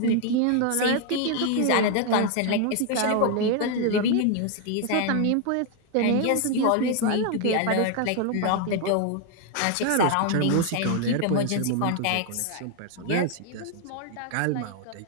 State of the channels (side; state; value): both; different; correlation 0.00